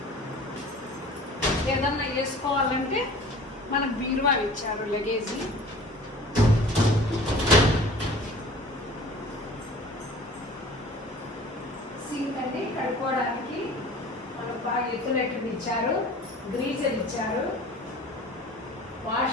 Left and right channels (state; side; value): normal; both; correlation 0.45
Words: ఏదన్నా వేసుకోవాలంటే మనకు బీరువా ఇచ్చారు, లగేజీ. సింక్ అండి కడుక్కోవడానికి మనకు బాగా ఎత్తులెట్లు ఇచ్చారు. గ్రీజర్ ఇచ్చారు,